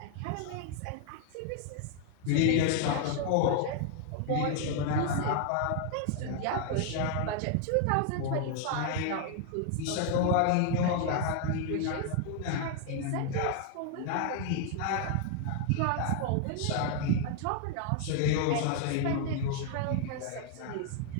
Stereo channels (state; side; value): different; both; correlation 0.00